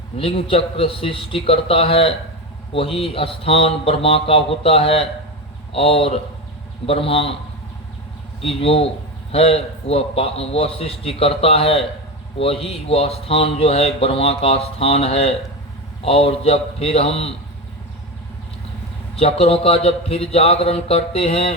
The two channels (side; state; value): both; normal; correlation 0.19